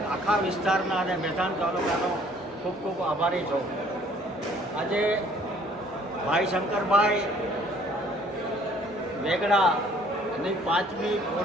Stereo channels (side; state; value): both; normal; correlation 0.58